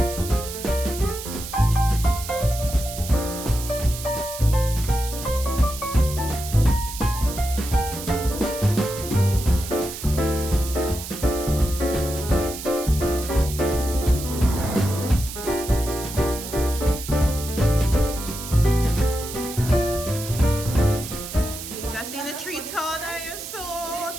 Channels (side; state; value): right; noise; hiss, 10 dB below the sound